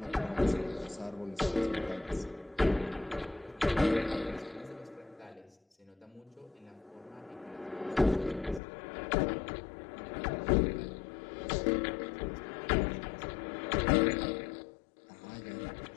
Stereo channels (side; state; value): right; drops out; at 8.6 s